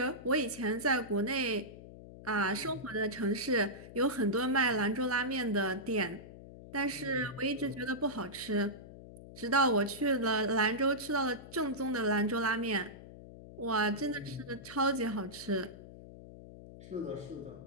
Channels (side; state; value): left; noise; hum, 16 dB below the sound